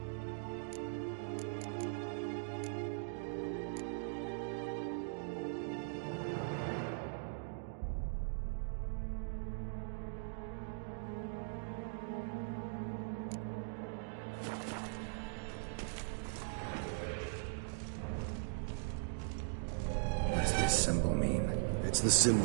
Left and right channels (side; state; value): left; silent; digital silence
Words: Symbol mean? It's the